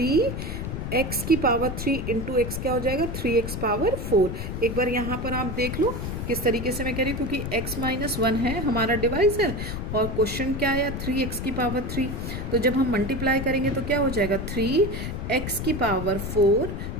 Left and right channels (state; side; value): noise; left; rumble, 5 dB below the sound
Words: की पावर 3 इंटू एक्स क्या हो जाएगा? 3x power 4। एक बार यहाँ पर आप देख लो किस तरीके से मैं कह रही हूँ, क्योंकि x माइनस 1 है हमारा डिवाइजर और क्वेश्चन क्या है? 3x की पावर 3। तो जब हम मल्टीप्लाई करेंगे तो क्या हो जाएगा? 3x की पावर 4